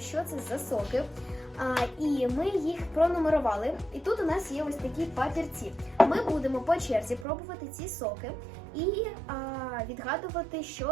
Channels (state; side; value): drops out; left; at 7.2 s